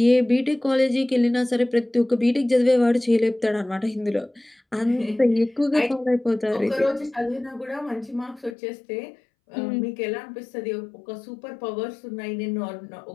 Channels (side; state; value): right; drops out; at 8.6 s